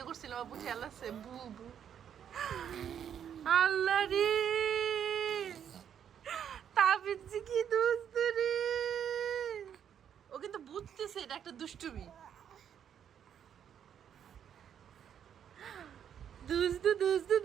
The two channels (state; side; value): quieter; left; 8.9 dB